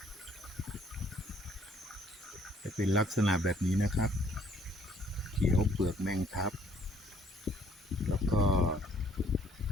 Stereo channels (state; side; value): normal; both; correlation 0.62